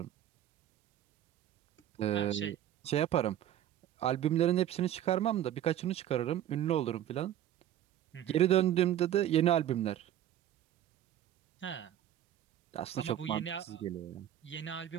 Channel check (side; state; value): left; quieter; 11.5 dB